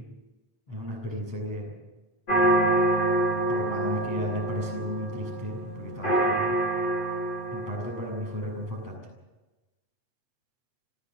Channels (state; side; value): late; right; 8.0 ms